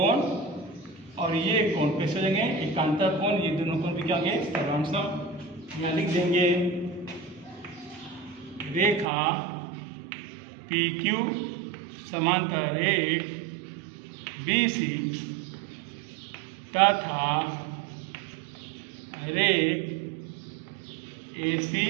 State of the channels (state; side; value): drops out; left; at 9.1 s